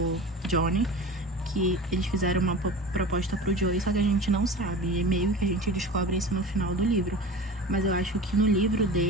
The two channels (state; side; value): normal; both; correlation 0.34